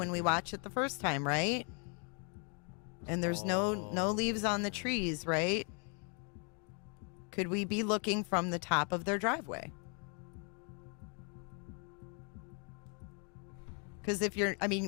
right we there. watch it the first time, right? And there's no leaves on the trees, right? Could we be looking from the top of their driveway? Because if you're, I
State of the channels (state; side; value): quieter; right; 38.4 dB